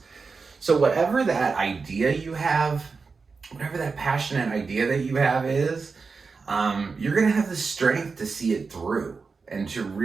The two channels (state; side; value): quieter; left; 4.7 dB